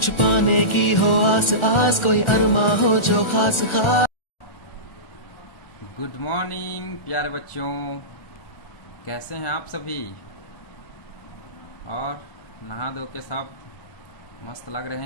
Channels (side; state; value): right; late; 1.4 ms